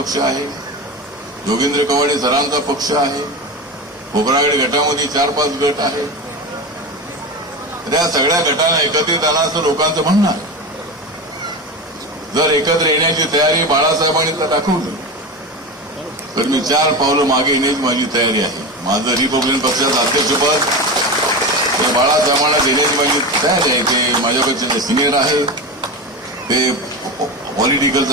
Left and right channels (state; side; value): normal; both; correlation 0.22